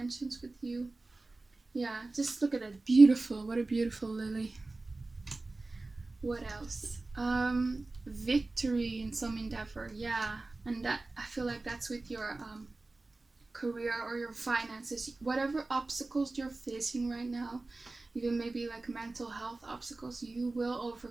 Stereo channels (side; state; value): left; quieter; 3.2 dB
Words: with you. Yeah, just look at that. Beautiful. What a beautiful lily. What else? Victory in some endeavor. Yeah, and that, I feel like that's with your career or your finances. Whatever obstacles you're facing right now, even maybe like mental health obstacles, you will